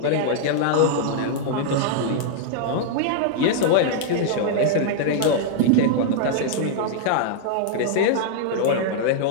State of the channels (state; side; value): different; both; correlation -0.01